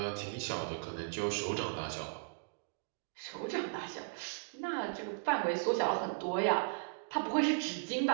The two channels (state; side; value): quieter; left; 37.7 dB